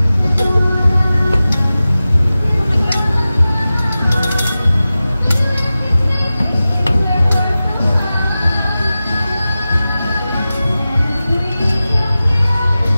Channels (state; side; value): inverted; both; correlation -0.95